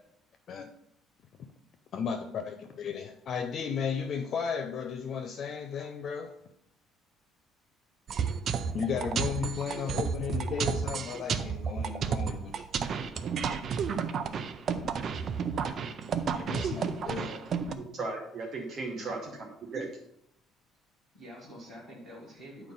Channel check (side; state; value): both; normal; correlation 0.62